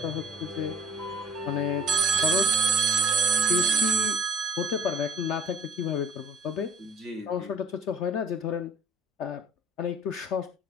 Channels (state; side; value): normal; both; correlation 0.49